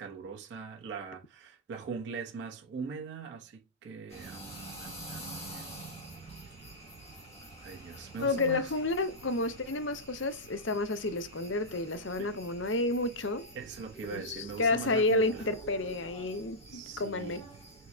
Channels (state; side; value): normal; both; correlation -0.10